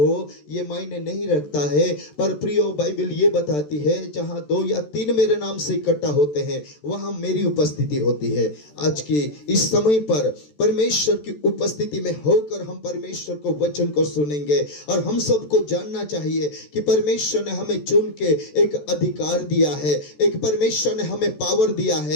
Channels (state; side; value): late; right; 14 ms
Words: ये मायने नहीं रखता है। पर प्रियो, बाइबल ये बताती है जहां 2 या 3 मेरे नाम से इकट्ठा होते हैं वहां मेरी उपस्थिति होती है। आज के इस समय पर परमेश्वर की उपस्थिति में होकर हम परमेश्वर को वचन को सुनेंगे। और हम सबको जानना चाहिए कि परमेश्वर ने हमें चुन के एक अधिकार दिया है, एक परमेश्वर ने हमें पावर दिया